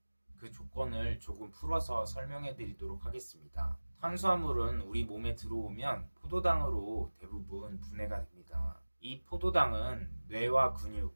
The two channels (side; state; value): both; inverted; correlation -1.00